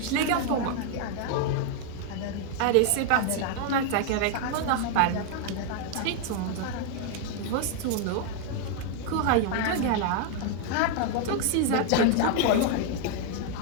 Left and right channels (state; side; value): different; both; correlation 0.00